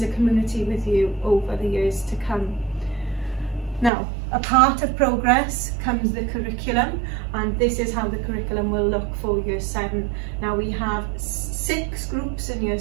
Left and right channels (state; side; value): drops out; left; at 3.9 s